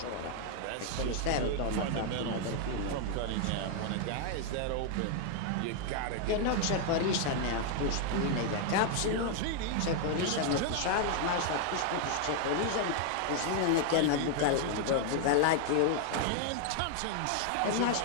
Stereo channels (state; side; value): different; both; correlation 0.00